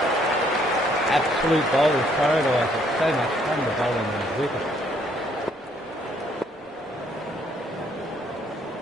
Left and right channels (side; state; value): both; normal; correlation 0.66